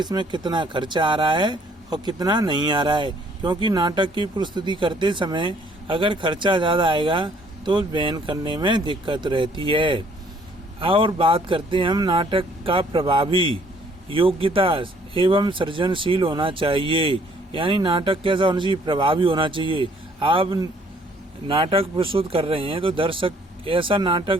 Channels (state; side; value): normal; both; correlation 0.62